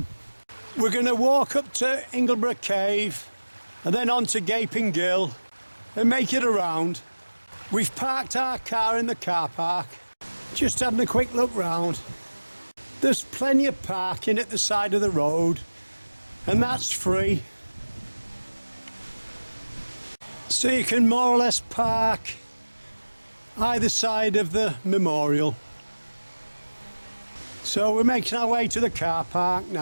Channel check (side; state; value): both; inverted; correlation -1.00